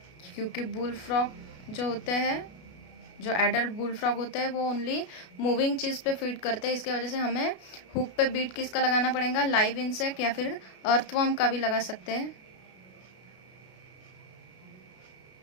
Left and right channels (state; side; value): late; right; 33 ms